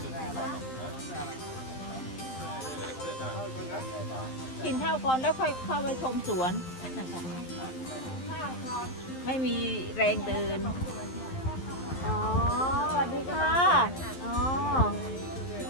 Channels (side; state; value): right; late; 11 ms